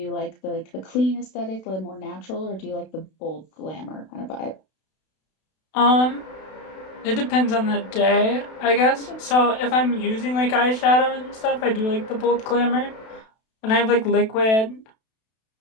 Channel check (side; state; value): right; late; 32 ms